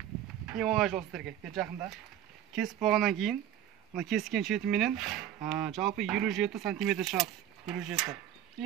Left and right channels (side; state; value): left; quieter; 10.9 dB